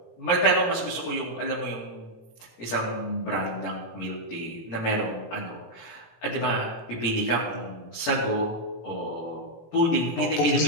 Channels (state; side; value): late; right; 17 ms